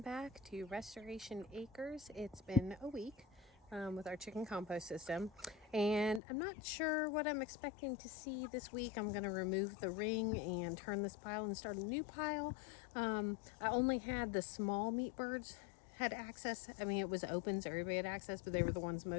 back to Restoration Acres. It's been a week with our chicken compost system, and I'm not sure what I'm expecting to see this week. I'm going to remove the ring and turn this pile and start a new pile. I only had the small meat birds had access. I mean, it was open, so everybody had access, but they were the ones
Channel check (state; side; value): drops out; right; at 6.2 s